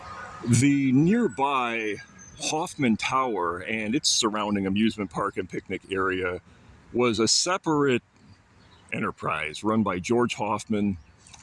The nearby Hoffman Tower and its surrounding amusement park and picnic area was a separate enterprise run by George Hoffman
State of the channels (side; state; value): both; identical; correlation 1.00